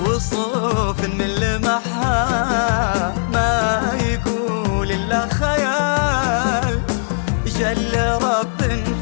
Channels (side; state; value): right; silent; digital silence